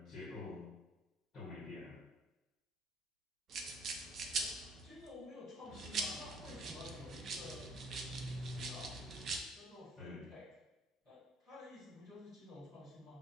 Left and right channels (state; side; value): normal; both; correlation 0.59